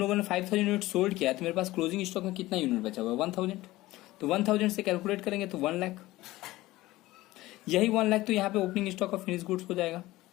ने 5,000 यूनिट सोल्ड किया, तो मेरे पास क्लोजिंग स्टॉक में कितना यूनिट बचा हुआ है 1,000। तो 1,000 से कैलकुलेट करेंगे तो 1 लाख, यही 1 लाख तो यहाँ पे opening stock of finish goods हो जाएगा।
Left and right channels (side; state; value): right; quieter; 17.9 dB